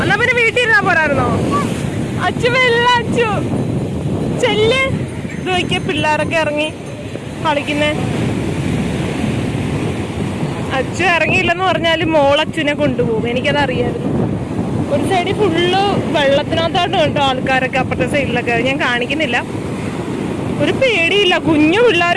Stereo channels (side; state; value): both; identical; correlation 1.00